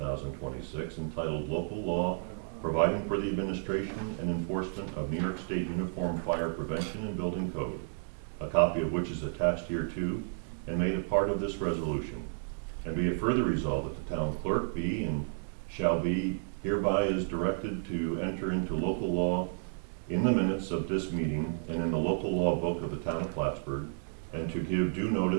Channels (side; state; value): left; silent; digital silence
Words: entitled Local Law Providing for the Administration and Enforcement of New York State Uniform Fire Prevention and Building Code, a copy of which is attached hereto and made a part of this resolution. And be it further resolved that the town clerk be and shall be hereby is directed to enter into local law in the minutes of this meeting and in the local law book of the town of Plattsburgh, and to give due